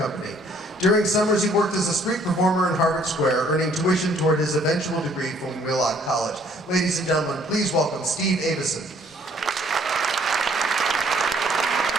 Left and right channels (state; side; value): normal; both; correlation 0.62